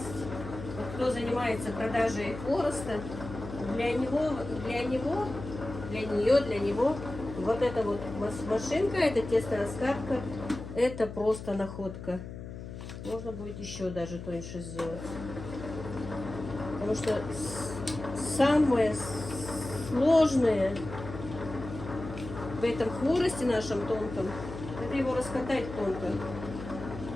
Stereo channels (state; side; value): noise; left; hum, 10 dB below the sound